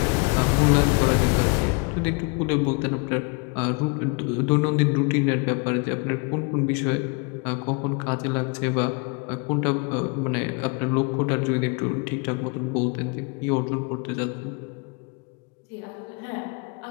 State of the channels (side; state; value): right; quieter; 32.9 dB